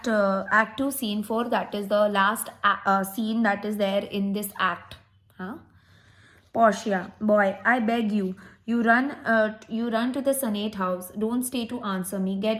2 scene 4, that is the last scene that is there in this act. Portia, boy, I beg you, You run to the Senate house. Don't stay to answer me.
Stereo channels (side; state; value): both; identical; correlation 1.00